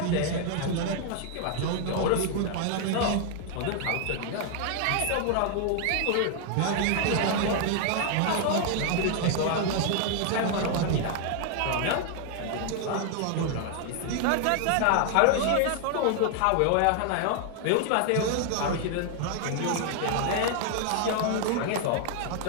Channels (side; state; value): both; different; correlation 0.00